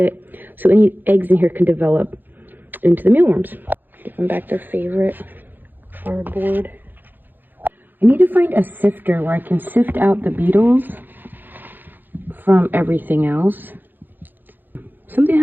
so any eggs in here can develop into the mealworms. Give them back their favorite cardboard. I need to find a sifter where I can sift out the beetles from everything else. Something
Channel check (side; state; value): left; late; 0.090 ms